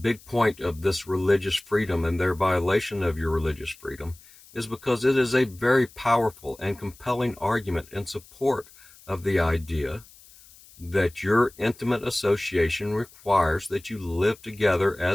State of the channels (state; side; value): noise; left; hiss, 24 dB below the sound